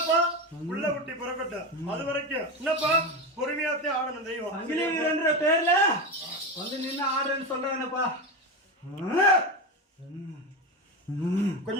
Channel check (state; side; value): normal; both; correlation 0.18